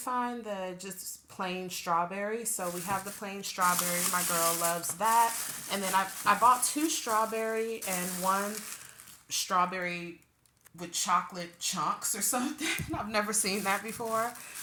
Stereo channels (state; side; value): identical; both; correlation 1.00